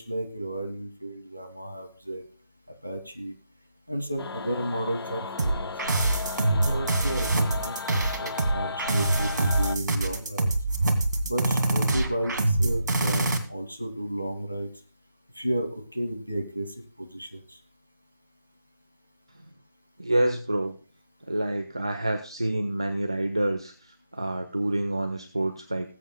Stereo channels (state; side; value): inverted; both; correlation -0.84